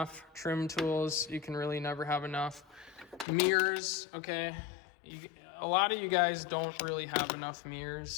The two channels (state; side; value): drops out; right; at 3.2 s